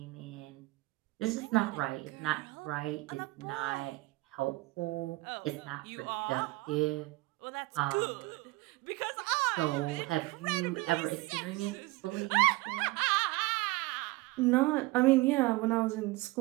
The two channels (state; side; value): quieter; left; 21.6 dB